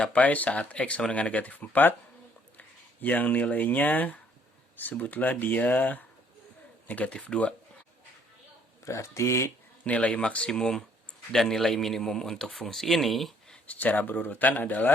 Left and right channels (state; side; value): normal; both; correlation 0.63